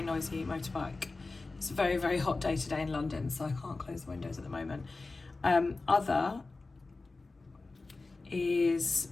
noisy motorbike. It's a very hot day today in London, so I can't close the windows at the moment. Other is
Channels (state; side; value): quieter; right; 3.6 dB